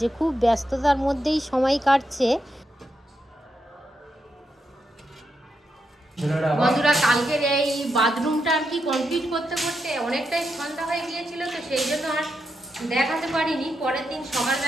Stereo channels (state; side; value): normal; both; correlation 0.84